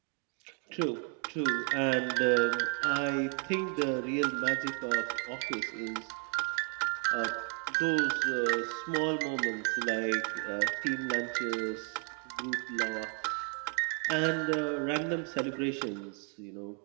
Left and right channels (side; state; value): left; quieter; 35.6 dB